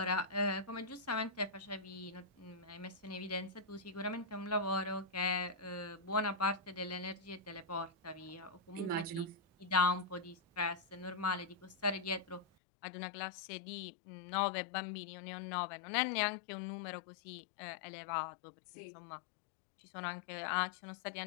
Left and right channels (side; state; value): right; drops out; at 12.5 s